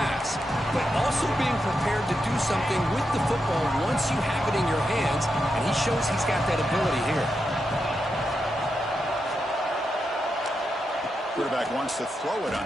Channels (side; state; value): both; normal; correlation 0.86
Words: but also being prepared to do something with the football once you have it in your hands. And he shows he's got that ability here. Quarterback wants to throw it